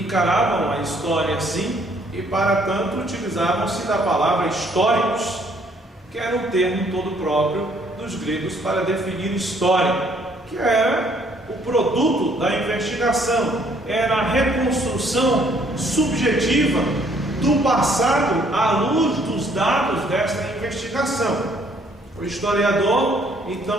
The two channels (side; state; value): both; normal; correlation 0.64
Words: a história assim e, para tanto, utilizavam-se da palavra históricos, que era um termo todo próprio dos gregos para definir história, que era o produto da investigação, era a reconstrução subjetiva do passado à luz dos dados desta investigação. O historiador,